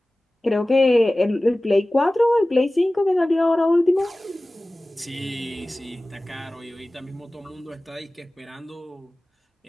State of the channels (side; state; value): both; normal; correlation 0.97